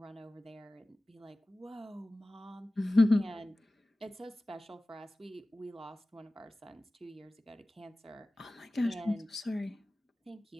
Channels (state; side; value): normal; both; correlation 0.97